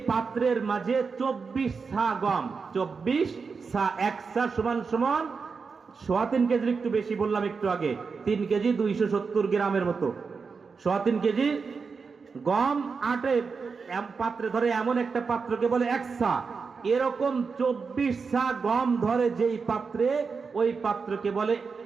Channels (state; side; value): quieter; left; 5.1 dB